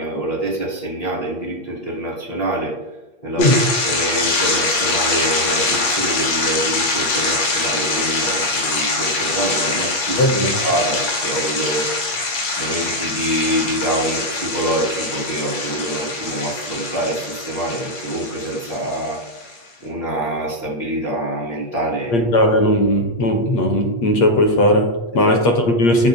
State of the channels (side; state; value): right; late; 8.5 ms